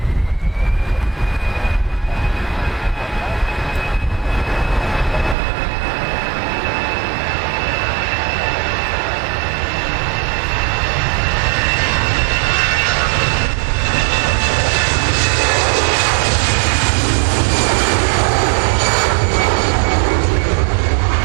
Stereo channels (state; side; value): drops out; left; at 5.4 s